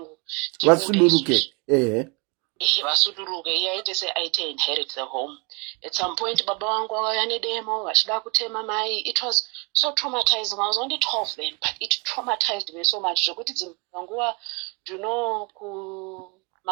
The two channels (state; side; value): quieter; left; 29.6 dB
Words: vasuduruke vasuduruke iye aite seaite inherit the home. At some point baba vangu vakauya nedemo vachida kutema mai. It was so traumatizing. I was only 12 then, but it traumatized me so much zvokuti dzimwe